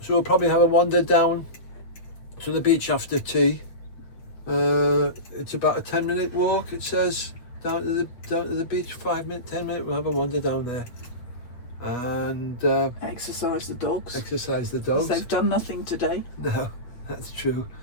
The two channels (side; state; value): right; late; 8.1 ms